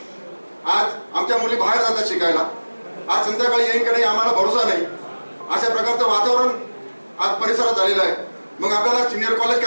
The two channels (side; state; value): both; inverted; correlation -1.00